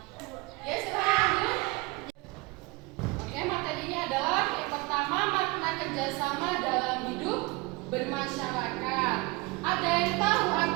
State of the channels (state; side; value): quieter; left; 24.3 dB